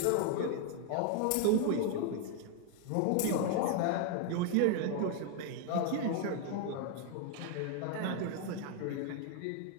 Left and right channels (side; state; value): both; different; correlation 0.00